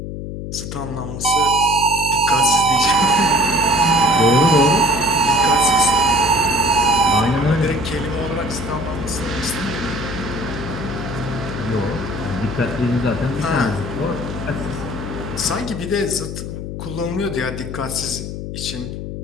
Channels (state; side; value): noise; left; hum, 7 dB below the sound